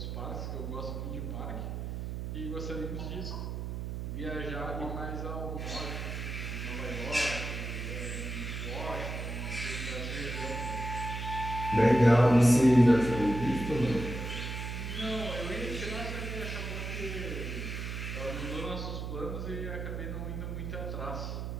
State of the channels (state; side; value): noise; right; hum, 4 dB below the sound